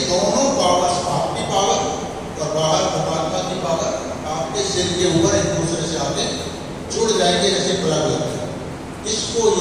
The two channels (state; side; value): identical; both; correlation 1.00